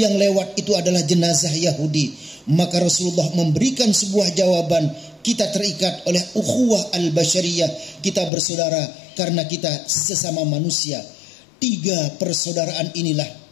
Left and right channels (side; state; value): right; drops out; at 8.3 s